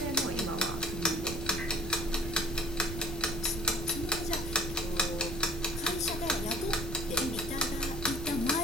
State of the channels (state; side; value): noise; right; rumble, 7 dB below the sound